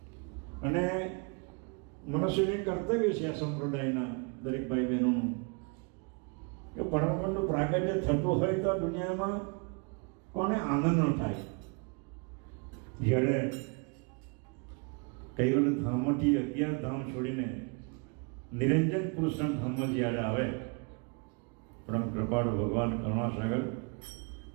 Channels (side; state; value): left; quieter; 34.4 dB